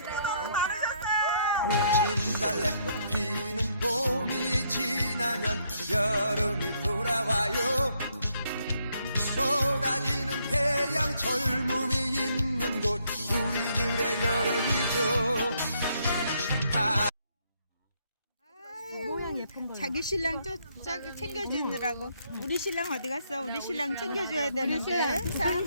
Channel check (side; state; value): both; inverted; correlation -0.71